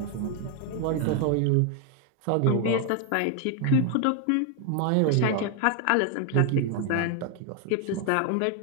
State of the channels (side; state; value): both; different; correlation 0.01